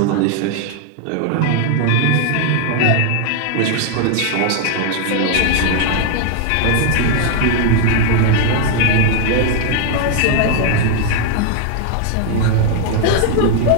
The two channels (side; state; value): both; different; correlation 0.00